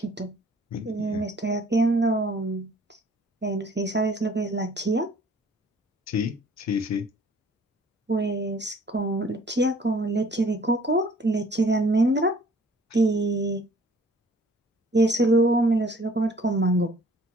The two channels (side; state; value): both; normal; correlation 0.56